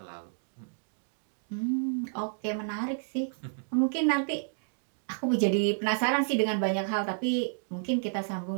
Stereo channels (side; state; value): left; silent; digital silence